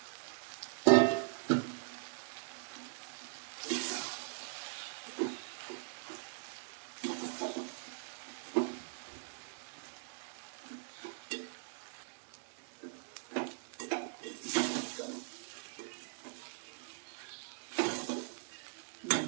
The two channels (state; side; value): silent; left; digital silence